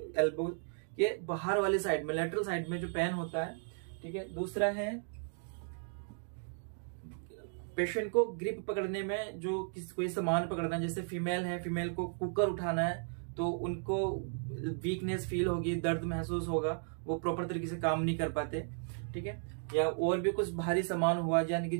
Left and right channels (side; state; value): left; silent; 54 dB below the other